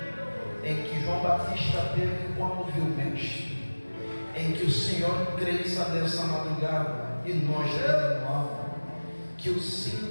em que João Batista teve quando viu o Mestre, em que o Senhor cresça nessa madrugada e nós renovamos. Que o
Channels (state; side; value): inverted; both; correlation -1.00